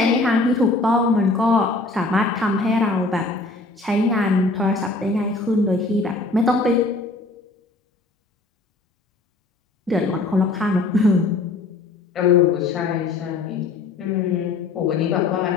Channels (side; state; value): right; quieter; 3.5 dB